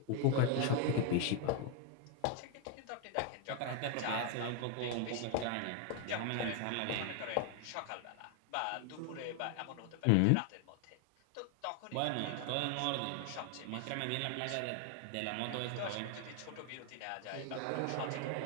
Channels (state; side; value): different; both; correlation 0.01